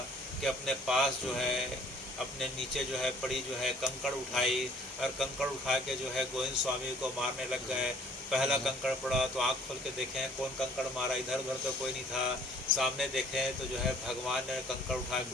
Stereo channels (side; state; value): both; normal; correlation 0.56